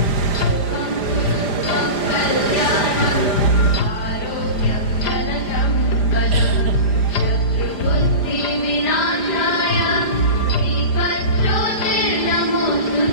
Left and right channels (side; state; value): right; late; 5.0 ms